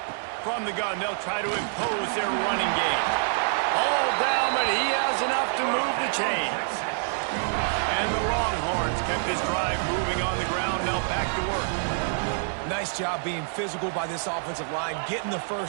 From the gun, they'll try to impose their running game. All down, but he has enough to move the chains. And the Longhorns kept this drive moving on the ground. Now back to work. Nice job being physical by this offensive line, getting the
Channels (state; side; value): silent; left; digital silence